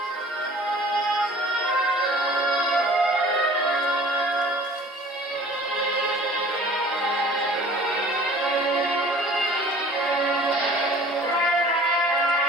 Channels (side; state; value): both; normal; correlation 0.48